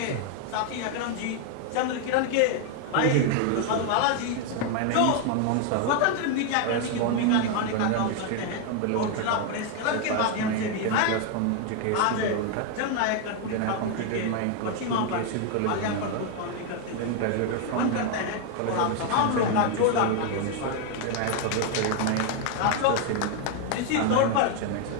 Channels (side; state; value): both; different; correlation 0.01